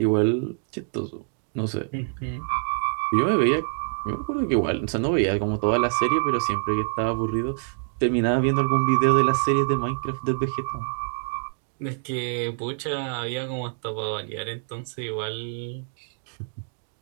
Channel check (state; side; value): silent; left; 61 dB below the other